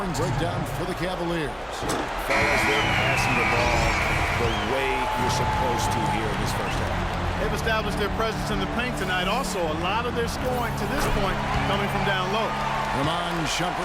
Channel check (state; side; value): identical; both; correlation 1.00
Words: breakdown for the Cavaliers. Fellas, they're passing the ball the way you're supposed to here in this first half. They've established their presence in the paint tonight. Also, a lot of their scoring to this point coming from down low. Ramon